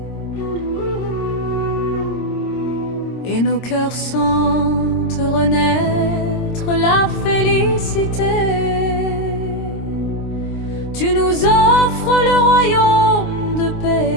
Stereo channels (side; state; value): right; late; 26 ms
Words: Et nos cœurs sentent renaître la félicité. Tu nous offres le royaume de